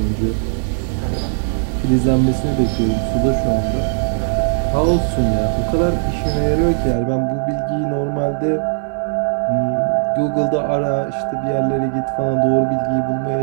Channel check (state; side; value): silent; left; digital silence